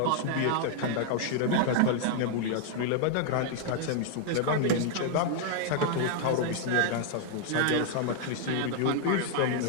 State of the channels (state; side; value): different; both; correlation 0.00